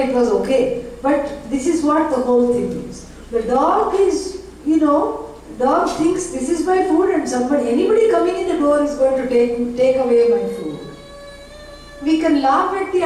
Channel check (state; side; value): identical; both; correlation 1.00